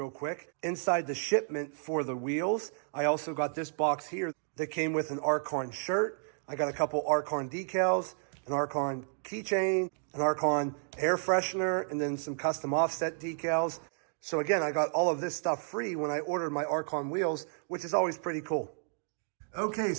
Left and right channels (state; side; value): silent; left; digital silence